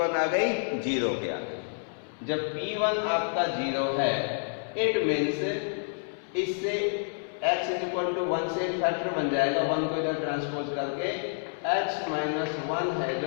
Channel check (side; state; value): right; silent; 59 dB below the other